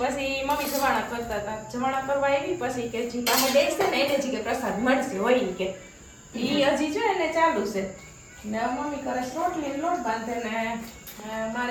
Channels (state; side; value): identical; both; correlation 1.00